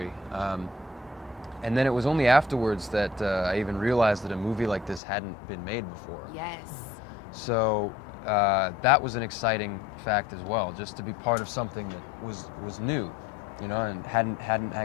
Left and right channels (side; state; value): right; drops out; at 5.0 s